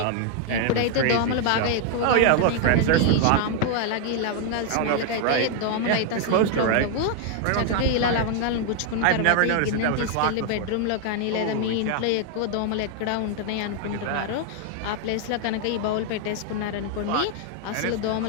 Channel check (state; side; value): different; both; correlation 0.00